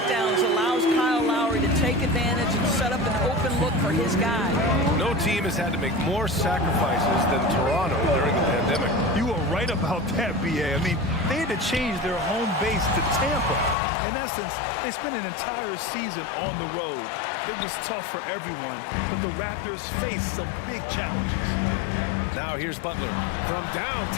allows Kyle Lowry to take advantage and set up an open look for his guy. No team has had to make more sacrifices than Toronto during the pandemic. You are right about that, B.A. I mean, they had to change their home base to Tampa. In essence, they spent an entire season on the road. It was tough for everyone, but the Raptors faced some big challenges. Now here's Butler from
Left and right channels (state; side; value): drops out; right; at 13.8 s